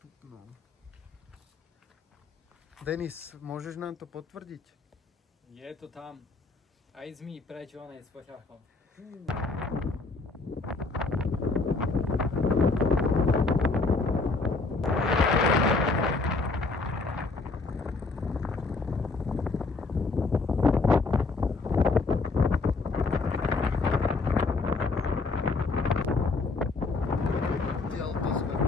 Denis, môžeš nám to potvrdiť? Je to tam. Aj zmí preč onej s poťahom.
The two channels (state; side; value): quieter; right; 3.9 dB